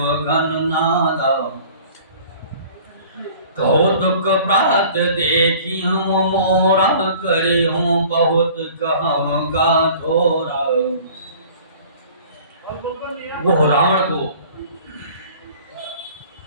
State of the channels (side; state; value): both; inverted; correlation -0.48